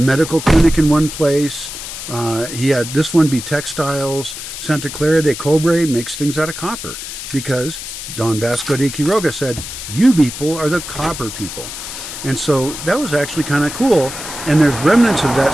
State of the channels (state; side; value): noise; left; hiss, 9 dB below the sound